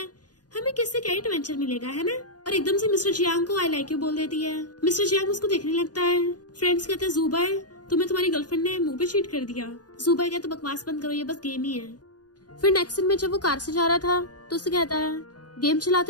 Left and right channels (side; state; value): right; late; 0.69 ms